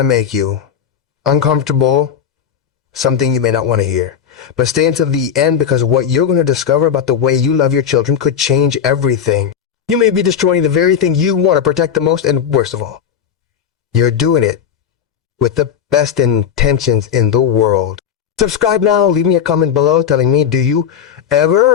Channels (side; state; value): right; quieter; 8.2 dB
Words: make you uncomfortable, something you may not want to hear. But stay until the end, because what you're going to discover about the way you love your children could change everything. You may be destroying the very thing you want to protect the most, and worst of all, you're doing it with the best intentions in the world. Subscribe now. Leave me a comment below telling me, do you